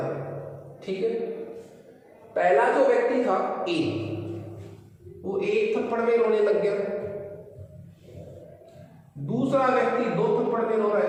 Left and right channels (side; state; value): both; identical; correlation 1.00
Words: ठीक है? पहला जो व्यक्ति था ए, वो एक थप्पड़ में रोने लग गया। दूसरा व्यक्ति दो थप्पड़ में रो रहा